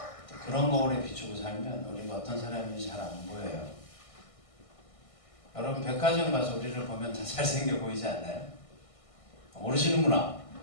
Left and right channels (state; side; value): late; right; 1.6 ms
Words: 그런 거울에 비추고 살면 우리가 어떤 사람인지 잘 안 보여요. 여러분 백화점 가서 우리를 보면 다 잘생겨 보이지 않나요? 모르시는구나.